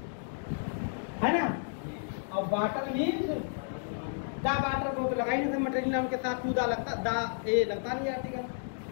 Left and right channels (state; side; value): silent; right; digital silence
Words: है ना, और वाटर मीन्स दा। वाटर को तो लगा ही नहीं था, मटेरियल नाम के साथ टू दा लगता, दा ए लगता नहीं आर्टिकल।